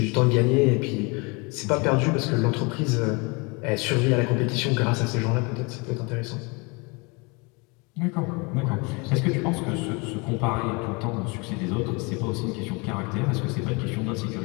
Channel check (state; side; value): quieter; right; 29.2 dB